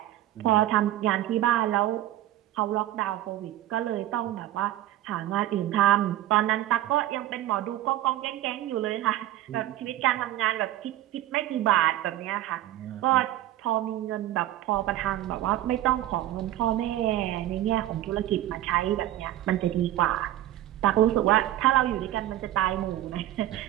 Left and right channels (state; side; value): quieter; left; 14.0 dB